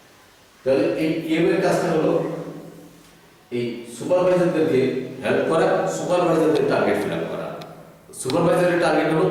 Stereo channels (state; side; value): identical; both; correlation 1.00